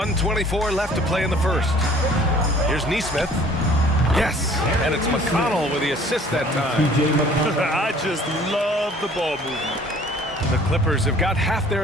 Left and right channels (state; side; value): normal; both; correlation 0.53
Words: left to play in the first. Here's Neesmith. Yes, and it's McConnell with the assist that time. I just love the ball movement. The Clippers have got half their